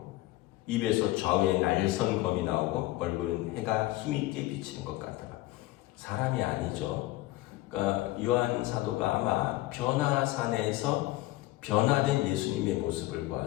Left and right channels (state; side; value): quieter; right; 17.7 dB